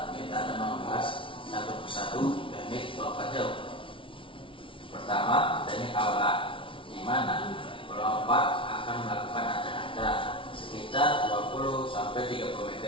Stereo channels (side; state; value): right; late; 0.25 ms